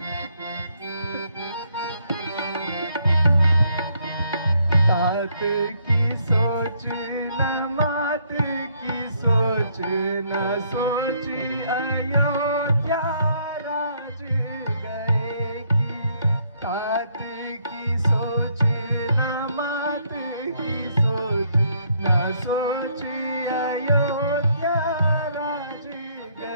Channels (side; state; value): both; inverted; correlation -0.70